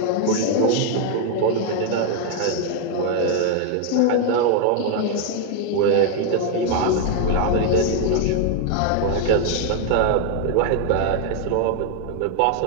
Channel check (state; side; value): different; both; correlation 0.00